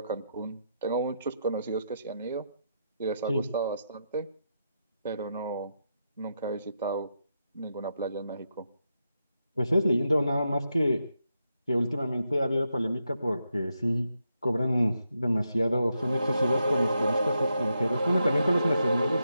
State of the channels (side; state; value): both; inverted; correlation -0.83